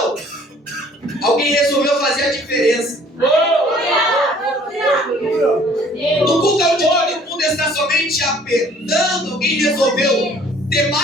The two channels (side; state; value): both; normal; correlation 0.55